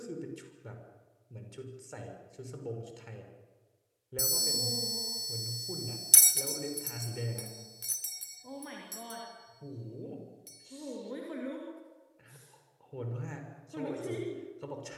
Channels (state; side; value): identical; both; correlation 1.00